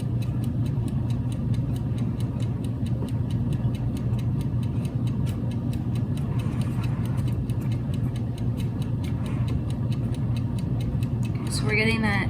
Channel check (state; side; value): identical; both; correlation 1.00